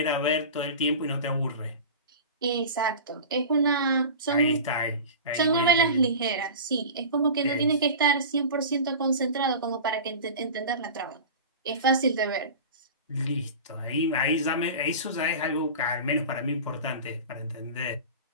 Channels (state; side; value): inverted; both; correlation -0.33